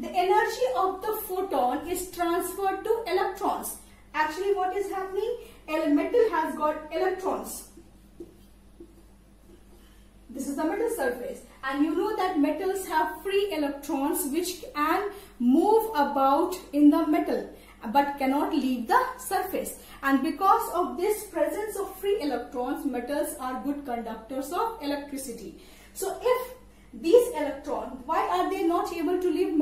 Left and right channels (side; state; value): both; identical; correlation 1.00